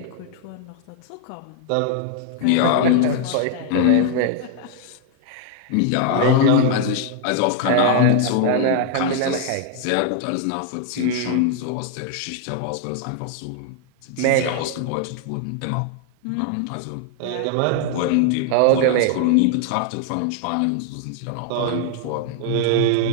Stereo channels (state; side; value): different; both; correlation 0.00